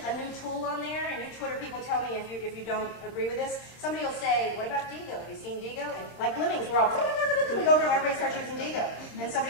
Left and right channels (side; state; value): right; late; 26 ms